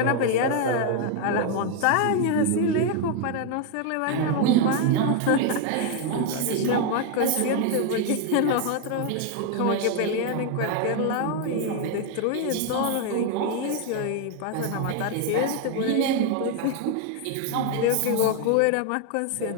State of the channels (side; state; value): both; different; correlation 0.01